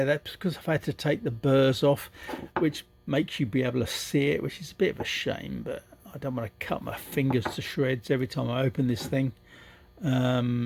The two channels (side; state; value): both; identical; correlation 1.00